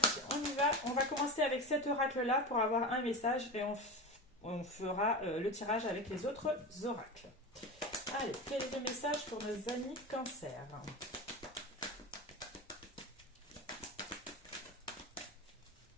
on y va. On va commencer avec cet oracle-là pour avoir un message et on fera le tirage avec les autres oracles. Allez, quel est le message pour nos amis Cancer?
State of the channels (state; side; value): normal; both; correlation 0.25